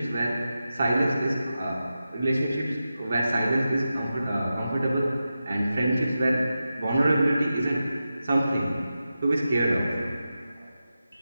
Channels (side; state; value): both; inverted; correlation -0.91